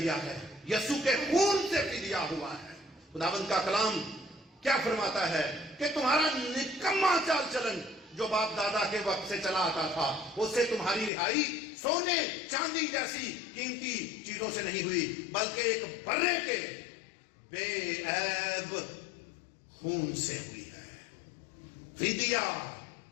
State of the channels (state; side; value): drops out; right; at 11.1 s